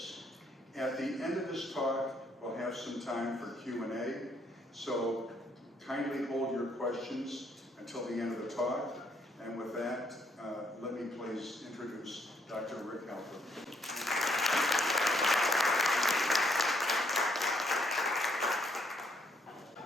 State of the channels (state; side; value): normal; both; correlation 0.70